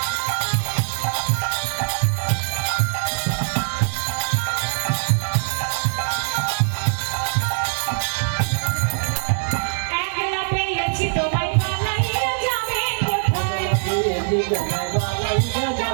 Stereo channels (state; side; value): silent; left; 64 dB below the other